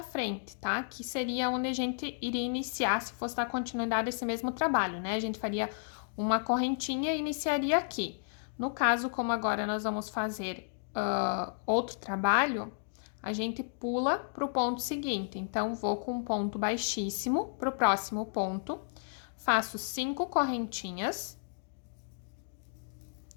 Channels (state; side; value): silent; right; digital silence